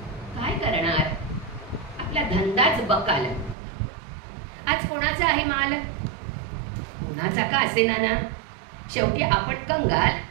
काय करणार, आपला धंदाच बकाल. आज कोणाचा आहे माल, कोणाचा का असेना ना, शेवटी आपण कंगाल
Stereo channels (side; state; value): left; drops out; at 3.6 s